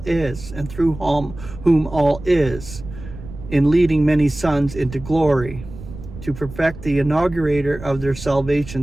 is, and through whom all is, in leading many sons into glory, to perfect the inaugurator of their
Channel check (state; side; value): noise; right; rumble, 14 dB below the sound